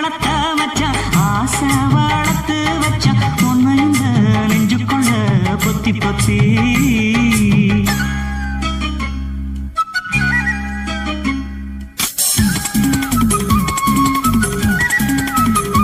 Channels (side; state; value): both; identical; correlation 1.00